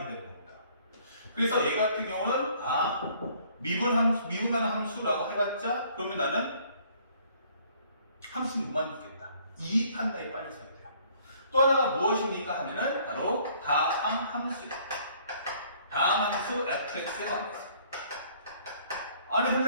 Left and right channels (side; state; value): both; inverted; correlation -0.60